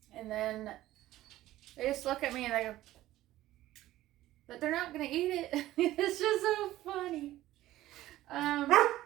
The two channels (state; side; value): quieter; left; 15.2 dB